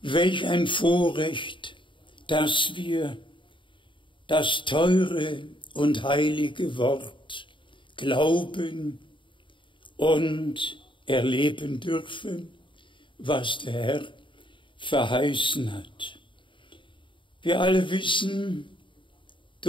Welch ein Vorrecht, dass wir das teure und heilige Wort glauben und erleben dürfen, was der Herr verheißen hat. Wir alle wissen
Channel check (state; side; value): late; right; 0.24 ms